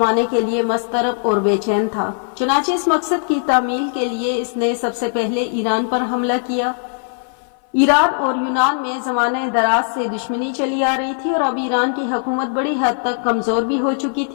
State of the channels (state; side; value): silent; right; 56 dB below the other